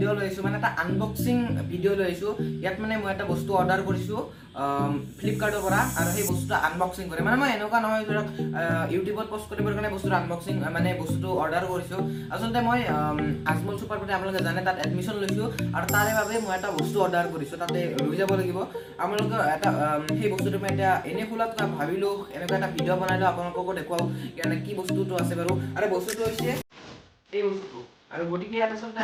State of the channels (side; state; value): both; identical; correlation 1.00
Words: লৈছো মানে এটা আনবক্সিং ভিডিঅ' লৈছো। ইয়াত মানে মই এটা বস্তু অৰ্ডাৰ কৰিছো ফ্লিপকাৰ্টৰ পৰা আৰু সেই বস্তুটো আনবক্সিং কৰে। মানে মই এনেকুৱা নহয় ধৰক ইউটিউবত পোষ্ট কৰিবৰ কাৰণে বস্তুটো আনবক্সিং মানে বস্তুটো অৰ্ডাৰ কৰিছো। আচলতে মই আজমল চুপাৰ বুলি আপোনালোকে জানে তাত এডমিশ্যন লৈছো আৰু তাৰে বাবে মই এটা বস্তু অৰ্ডাৰ কৰিছো। তাতে লৈ যাব লাগিব। আপোনালোকে এটা সেই বস্তুটো মই এতিয়া এনে খোলাত ভাবিলো এনেকুৱা এটা ভিডিঅ' বনাইলো আপোনালোককো দেখুৱাও মানে কি বস্তুটো আছে বাৰু। আৰু বস্তুটো হৈছে এই বস্তুটো আৰু গতিকে ইয়াত আচলতে